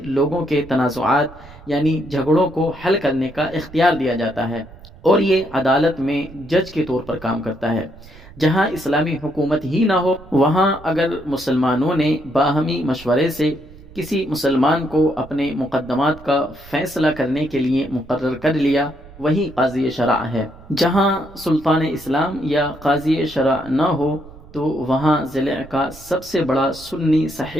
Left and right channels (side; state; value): right; noise; rumble, 20 dB below the sound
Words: لوگوں کے تنازعات یعنی جھگڑوں کو حل کرنے کا اختیار دیا جاتا ہے، اور یہ عدالت میں جج کے طور پر کام کرتا ہے۔ جہاں اسلامی حکومت ہی نہ ہو، وہاں اگر مسلمانوں نے باہمی مشورے سے کسی مسلمان کو اپنے مقدمات کا فیصلہ کرنے کے لیے مقرر کر لیا، وہی قاضی شرع ہے۔ جہاں سلطان اسلام یا قاضی شرع نہ ہو تو وہاں ضلع کا سب سے بڑا سنی